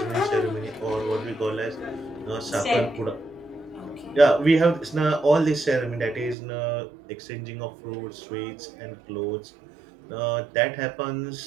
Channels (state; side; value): drops out; left; at 6.4 s